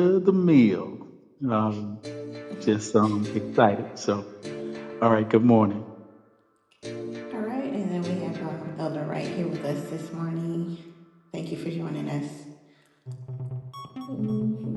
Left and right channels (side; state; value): both; identical; correlation 1.00